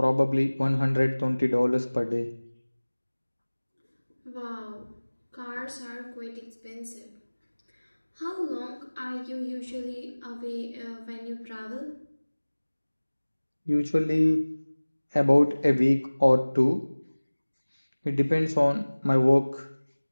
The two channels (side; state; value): both; inverted; correlation -1.00